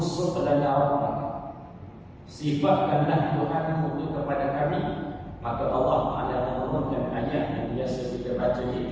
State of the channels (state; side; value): identical; both; correlation 1.00